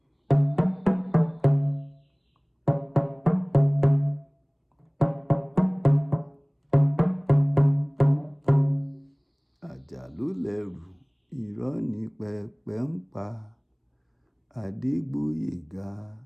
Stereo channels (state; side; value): identical; both; correlation 1.00